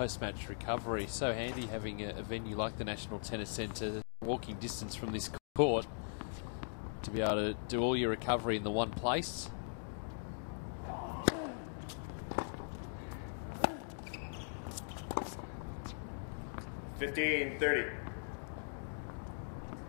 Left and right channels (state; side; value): silent; right; digital silence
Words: recovery. So handy having a venue like the National Tennis Centre, walking distance from this court, to be able to do all your recovery in the one place.